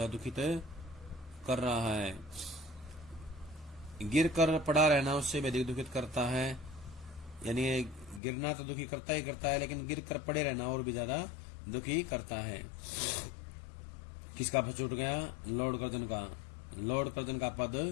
है दुखित कर रहा है। गिर कर पड़ा रहना उससे भी अधिक दुखित करता है। यानी गिरना तो दुखी करता ही करता है, लेकिन गिर कर पड़े रहना और भी ज्यादा दुखी करता है। किसका पद छूट गया? लॉर्ड कर्जन का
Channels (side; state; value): right; drops out; at 8.2 s